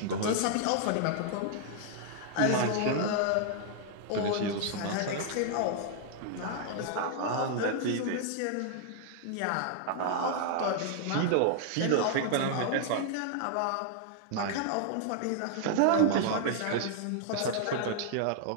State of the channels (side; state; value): both; different; correlation 0.00